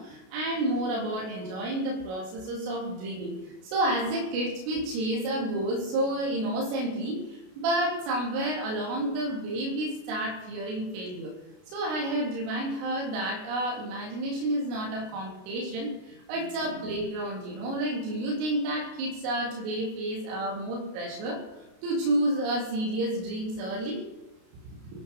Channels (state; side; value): late; left; 32 ms